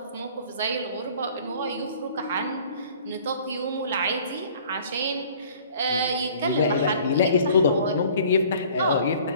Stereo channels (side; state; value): both; inverted; correlation -0.51